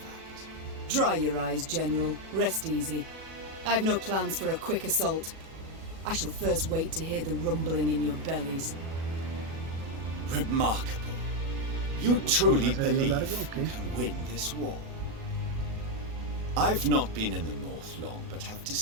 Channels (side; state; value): left; late; 37 ms